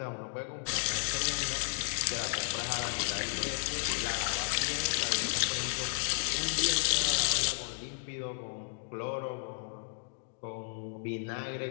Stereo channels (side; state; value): right; silent; digital silence